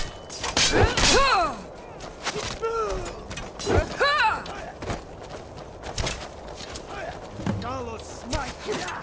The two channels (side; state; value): both; identical; correlation 1.00